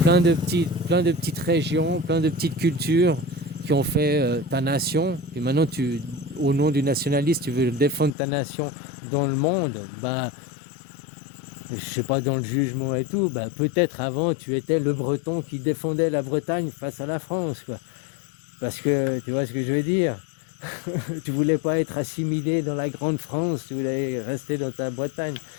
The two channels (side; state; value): right; drops out; at 8.2 s